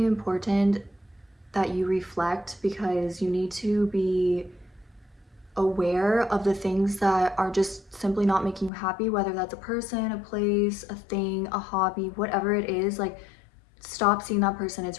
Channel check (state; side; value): drops out; right; at 8.7 s